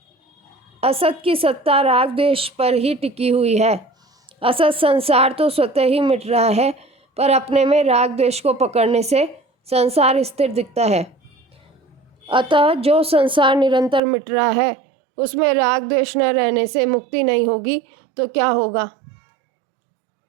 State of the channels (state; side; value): drops out; left; at 14.0 s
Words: असत की सत्ता राग द्वेष पर ही टिकी हुई है। असत संसार तो स्वतः ही मिट रहा है, पर अपने में राग द्वेष को पकड़ने से संसार स्थिर दिखता है। अतः जो संसार निरंतर मिट रहा है, उसमें राग द्वेष न रहने से मुक्ति नहीं होगी तो क्या होगा?